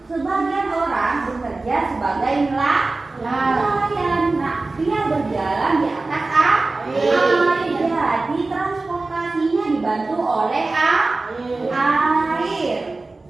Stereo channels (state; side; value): quieter; left; 3.4 dB